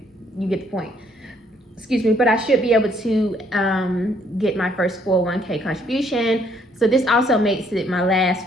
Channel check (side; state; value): both; normal; correlation 0.67